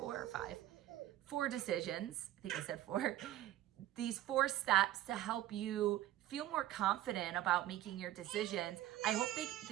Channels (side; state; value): left; quieter; 13.8 dB